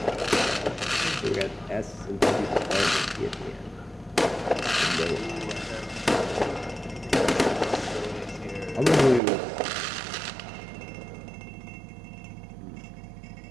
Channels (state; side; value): drops out; left; at 9.2 s